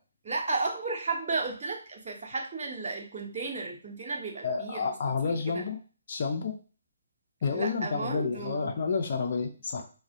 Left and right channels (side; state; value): both; inverted; correlation -0.71